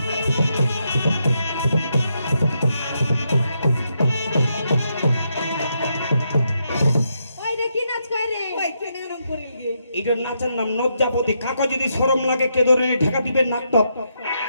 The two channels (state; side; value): inverted; both; correlation -0.80